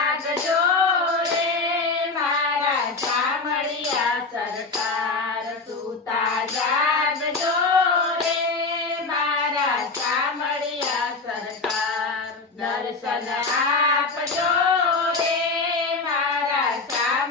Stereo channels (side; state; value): right; quieter; 3.9 dB